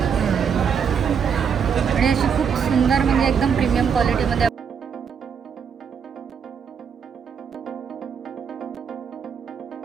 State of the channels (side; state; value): left; quieter; 7.0 dB